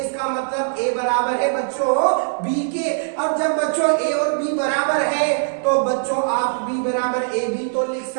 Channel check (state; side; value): silent; left; digital silence